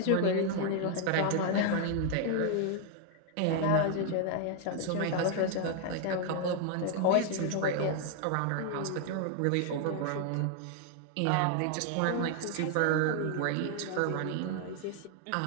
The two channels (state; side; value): different; both; correlation 0.00